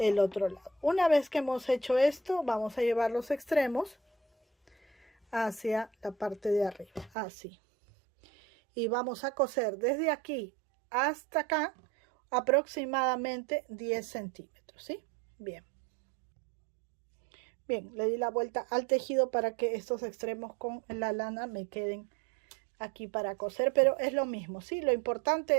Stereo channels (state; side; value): drops out; left; at 7.1 s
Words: otro lado. Una vez que hemos hecho esto, vamos a llevar los extremos hacia la parte de arriba, así. Y vamos a coser desde aquí hasta acá aproximadamente 10 centímetros, ¿sí? Bien. Bien, le di la vuelta al tejido para que estos extremos con la lana me queden aquí para coser, pero es lo mismo, ¿sí? Lo